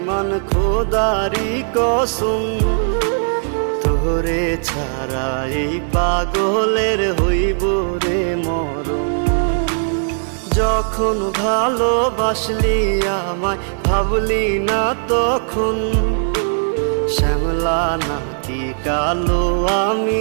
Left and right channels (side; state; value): left; silent; 62 dB below the other